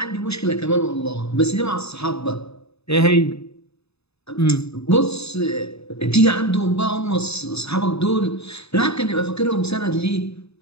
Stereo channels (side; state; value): right; late; 0.79 ms